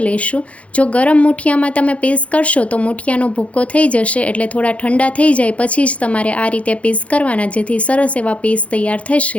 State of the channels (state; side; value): late; right; 0.064 ms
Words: લઈશું। જો ગરમ મુઠિયામાં તમે પીસ કરશો તો મુઠિયાનો ભૂક્કો થઈ જશે, એટલે થોડા ઠંડા થઈ જાય પછી જ તમારે આ રીતે પીસ કરવાના, જેથી સરસ એવા પીસ તૈયાર